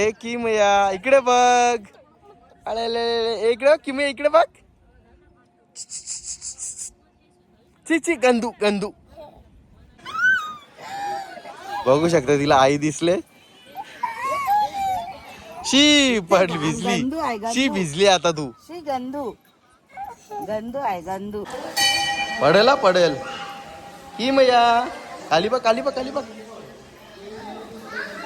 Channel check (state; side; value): identical; both; correlation 1.00